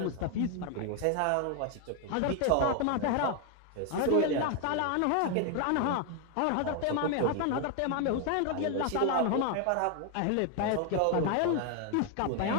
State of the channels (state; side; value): different; both; correlation 0.01